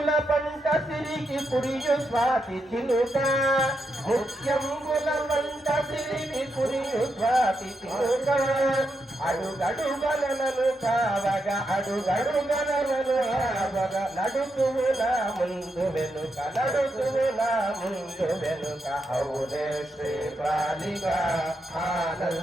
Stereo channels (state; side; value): normal; both; correlation 0.83